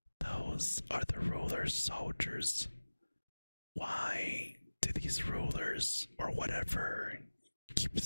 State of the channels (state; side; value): inverted; both; correlation -1.00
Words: those are the ruler's soldiers. Why do these rulers, or whatever, keep